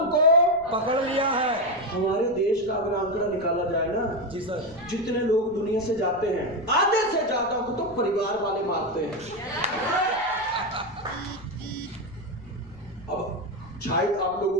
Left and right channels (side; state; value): right; noise; rumble, 24 dB below the sound